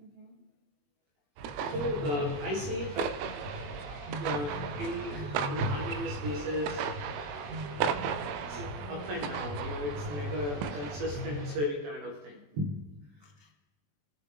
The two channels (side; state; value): left; late; 21 ms